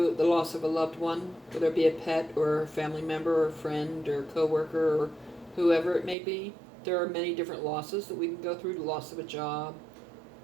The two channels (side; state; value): left; drops out; at 6.2 s